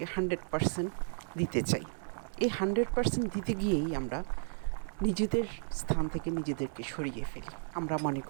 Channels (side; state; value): left; silent; 55 dB below the other